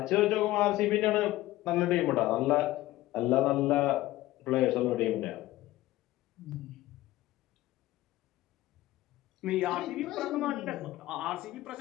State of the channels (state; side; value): quieter; right; 16.7 dB